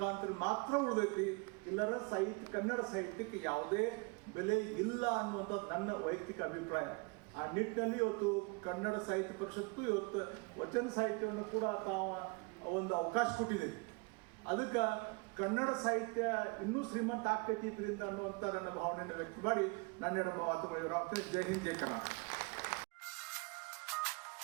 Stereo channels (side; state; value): left; quieter; 29.5 dB